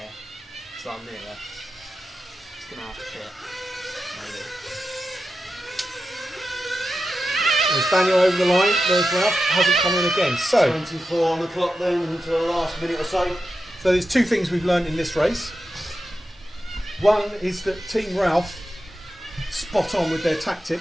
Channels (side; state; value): both; normal; correlation 0.90